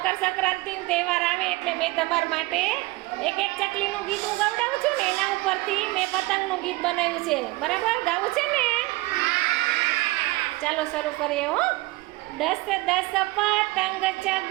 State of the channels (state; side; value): quieter; left; 21.6 dB